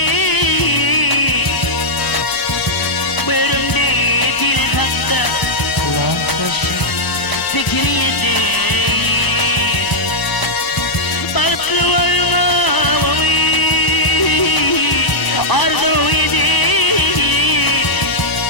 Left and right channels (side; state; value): right; late; 1.1 ms